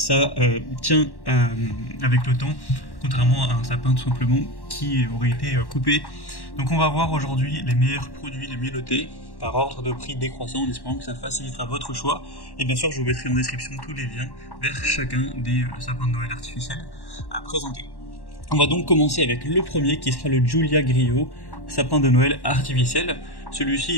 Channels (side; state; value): right; late; 1.1 ms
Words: tient avec le temps, contrairement à un sapin tout simplement qui aurait été coupé. Donc on va voir aujourd'hui les meilleurs produits, les mieux notés, par ordre de prix décroissant, en espérant que ça facilitera votre choix. Et bien sûr, je vous mettrai en description tous les liens vers chacun des sapins de Noël artificiels à présenter. On va donc commencer avec le premier qui sera le Giulia Griot, sapin de Noël artificiel. Celui-ci